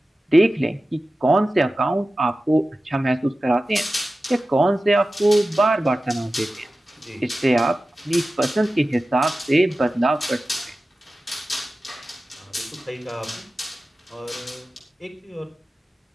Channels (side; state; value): both; normal; correlation 0.95